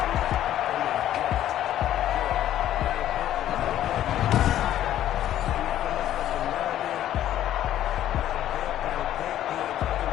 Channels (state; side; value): quieter; right; 12.1 dB